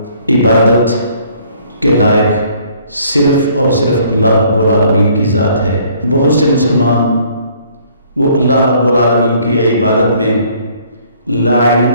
عبادت کے لائق صرف اور صرف اللہ رب العالمین کی ذات ہے۔ بہت سے مسلمان وہ اللہ رب العالمین کی عبادت میں لا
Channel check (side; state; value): both; inverted; correlation -0.60